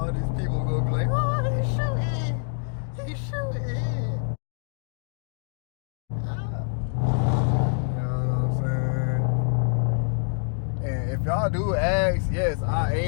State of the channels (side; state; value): right; silent; digital silence